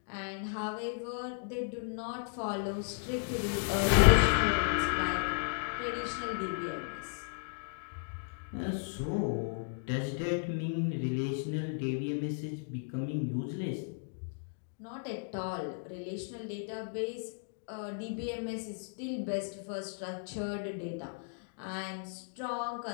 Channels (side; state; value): right; silent; digital silence